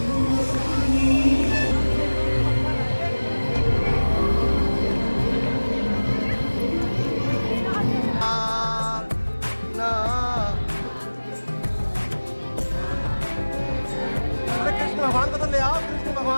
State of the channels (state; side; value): inverted; both; correlation -1.00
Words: Krishna भगवान को तो ले आओ, कृष्ण